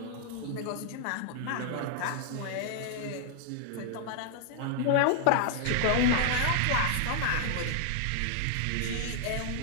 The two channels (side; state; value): both; different; correlation 0.00